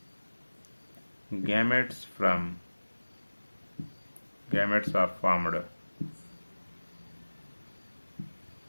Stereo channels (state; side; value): inverted; both; correlation -1.00